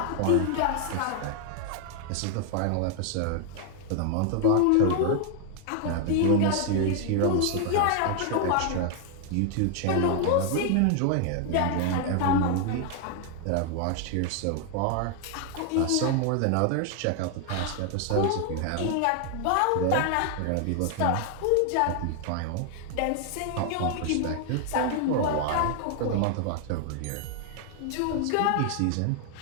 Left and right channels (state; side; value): different; both; correlation 0.00